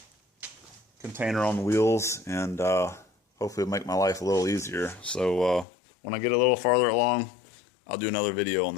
container on wheels, and hopefully it'll make my life a little easier. So when I get a little farther along, I'll do another video on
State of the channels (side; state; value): right; drops out; at 5.7 s